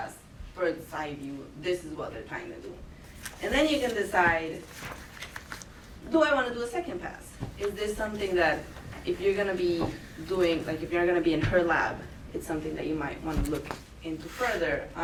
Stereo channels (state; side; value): identical; both; correlation 1.00